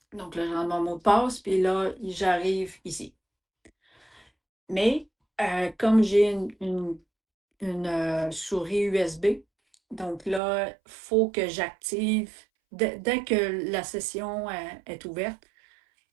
Donc là, je rentre mon mot de passe, puis là, j'arrive ici. Mais comme j'ai une souris USB, donc là, il faut que j'active, dès que la session est ouverte,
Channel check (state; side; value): drops out; left; at 10.4 s